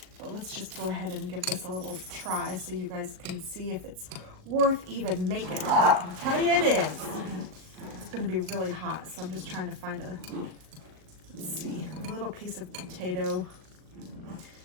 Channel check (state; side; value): late; left; 38 ms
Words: But let's just go ahead and give this a little try so you guys can see if it's worth even making. I can tell you it is. It's gonna be really hot, so I'm just trying to find a, let's see, a little piece of potato.